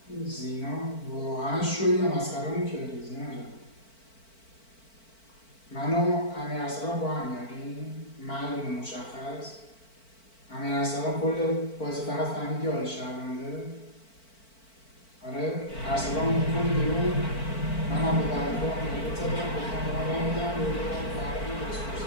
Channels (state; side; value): late; right; 4.5 ms